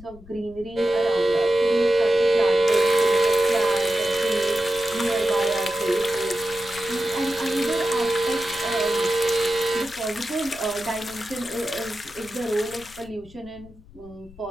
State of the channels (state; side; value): noise; left; rumble, 22 dB below the sound